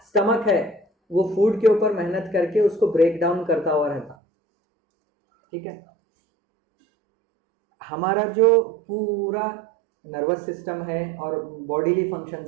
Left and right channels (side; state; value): left; drops out; at 4.2 s